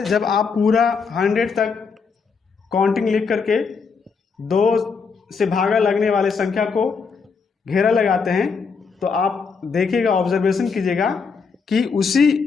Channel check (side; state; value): right; quieter; 5.3 dB